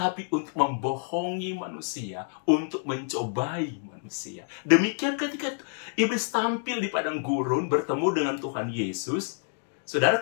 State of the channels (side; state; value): right; silent; 59 dB below the other